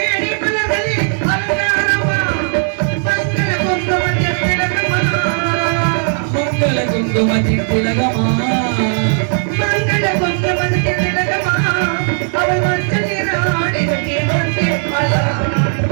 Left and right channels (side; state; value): left; silent; 58 dB below the other